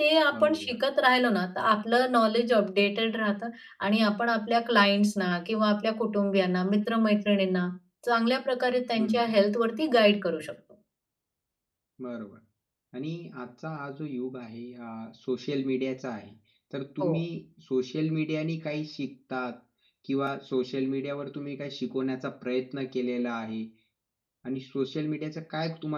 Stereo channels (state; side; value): identical; both; correlation 1.00